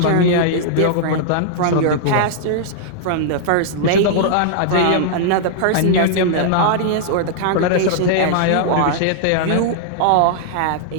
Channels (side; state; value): both; different; correlation -0.01